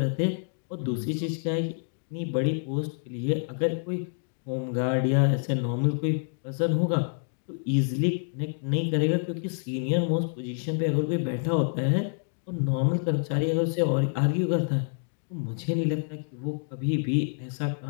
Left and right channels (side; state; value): right; silent; digital silence